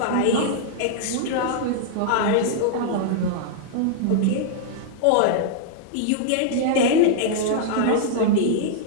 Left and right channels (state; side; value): different; both; correlation -0.01